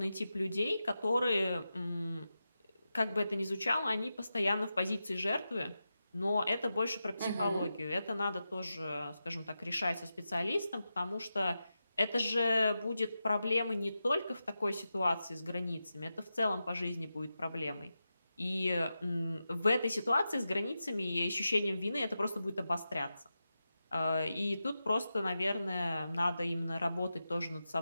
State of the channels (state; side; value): inverted; both; correlation -0.91